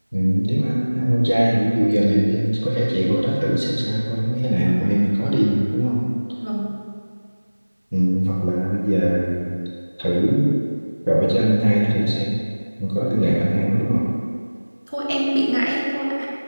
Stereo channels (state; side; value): inverted; both; correlation -1.00